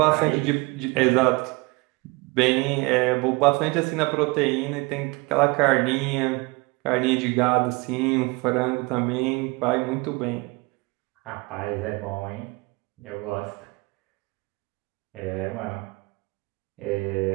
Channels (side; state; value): left; quieter; 25.7 dB